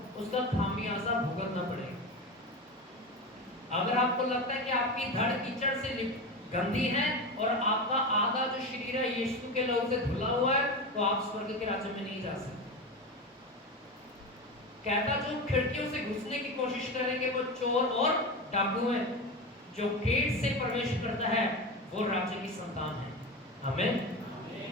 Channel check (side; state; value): both; normal; correlation 0.22